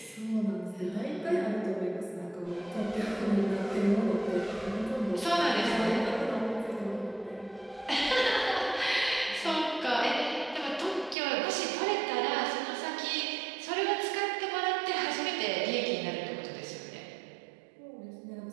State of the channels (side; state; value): left; drops out; at 11.2 s